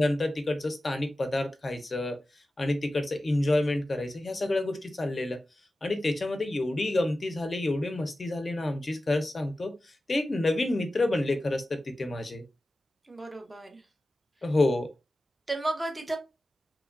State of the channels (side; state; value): both; normal; correlation 0.94